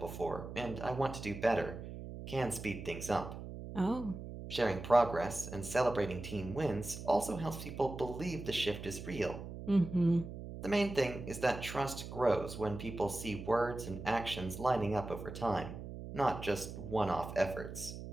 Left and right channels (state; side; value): noise; right; hum, 10 dB below the sound